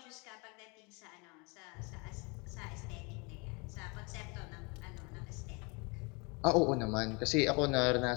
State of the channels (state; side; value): quieter; right; 30.2 dB